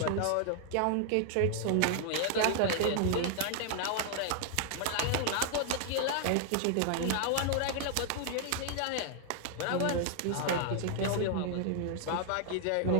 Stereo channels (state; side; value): different; both; correlation 0.00